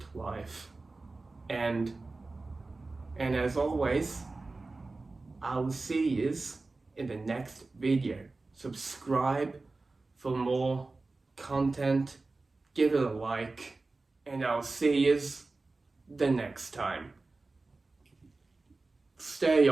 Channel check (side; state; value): left; quieter; 3.5 dB